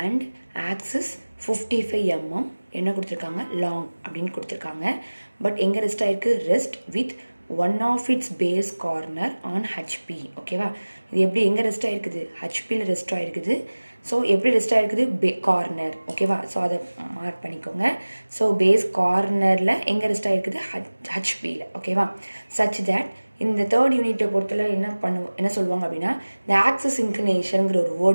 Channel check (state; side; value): inverted; both; correlation -1.00